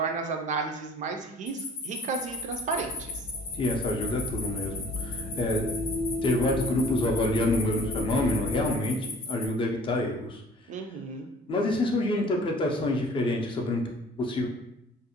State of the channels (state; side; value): normal; both; correlation 0.50